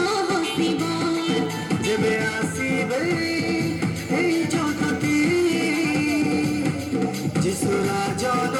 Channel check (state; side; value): identical; both; correlation 1.00